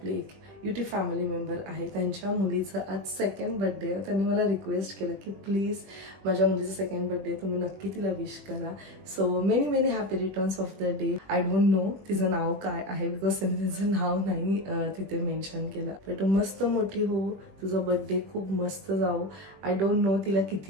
एक युट्यूब फॅमिली मेंबर आहे त्यांच्या मुलीचं आज 2nd बर्थडे. त्यांनी मला रिक्वेस्ट केलं की प्लीज माझ्या मुलीचं 2nd बर्थडे तुम्ही नक्की तिला विश करा. So many happy returns of the day. I don't know तिचं नाव काय आहे बिकॉज त्यांनी तिचं नाव नाही तिथे मेन्शन केलं. पण तू मस्त मोठी हो, तुझा बर्थडे खूप मस्त जाऊ. आय डोंट नो तिला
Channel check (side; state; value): left; late; 21 ms